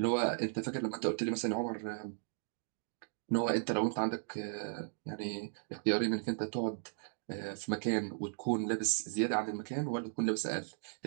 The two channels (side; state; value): left; silent; digital silence